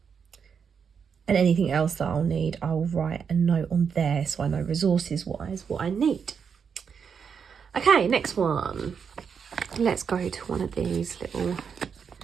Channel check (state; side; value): quieter; left; 6.6 dB